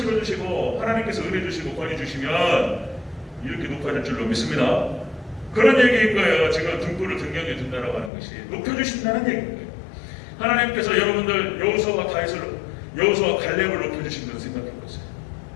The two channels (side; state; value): right; drops out; at 8.1 s